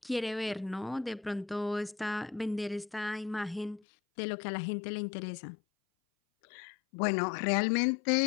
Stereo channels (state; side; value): drops out; right; at 3.8 s